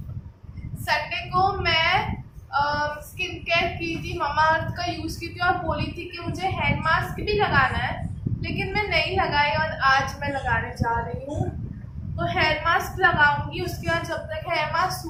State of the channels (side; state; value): both; identical; correlation 1.00